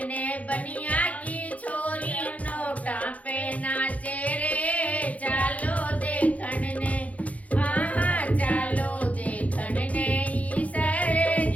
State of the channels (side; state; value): right; late; 0.069 ms